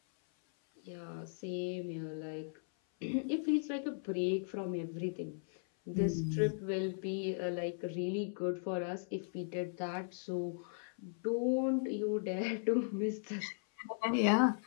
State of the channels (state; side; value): silent; right; 53 dB below the other